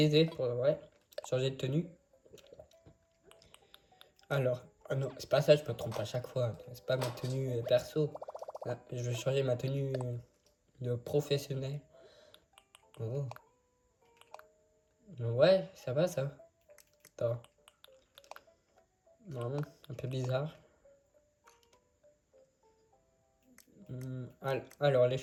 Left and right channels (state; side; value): identical; both; correlation 1.00